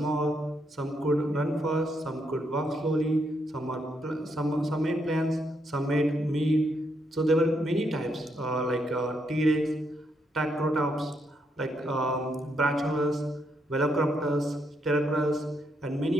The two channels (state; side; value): normal; both; correlation 0.77